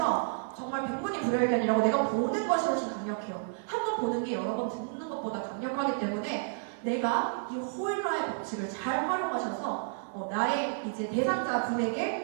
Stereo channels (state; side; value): silent; left; digital silence